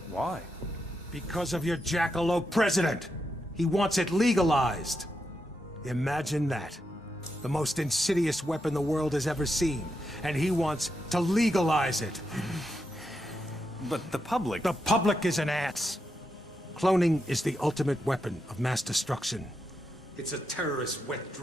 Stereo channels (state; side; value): normal; both; correlation 0.84